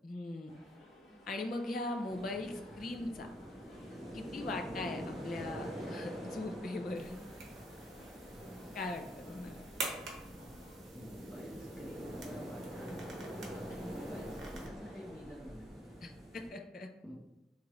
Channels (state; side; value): normal; both; correlation 0.71